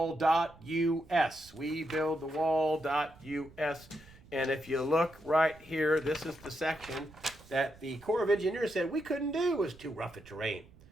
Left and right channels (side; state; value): right; noise; rumble, 24 dB below the sound